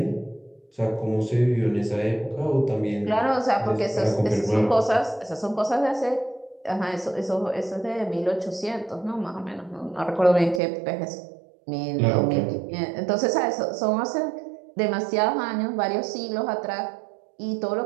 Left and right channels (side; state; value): left; drops out; at 10.6 s